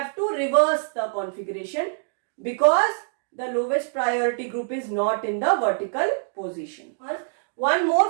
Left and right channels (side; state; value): left; silent; digital silence